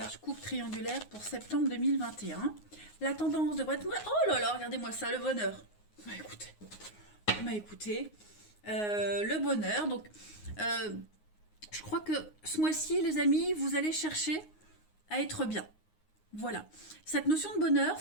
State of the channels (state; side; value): late; right; 9.6 ms